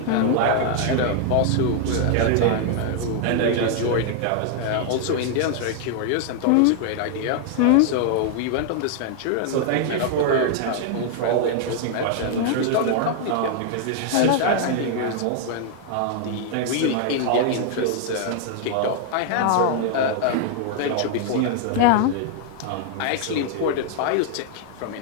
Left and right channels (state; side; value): different; both; correlation 0.00